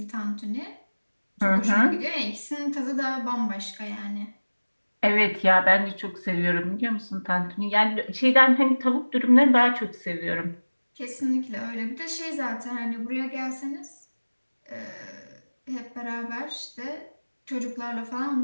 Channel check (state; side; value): inverted; both; correlation -1.00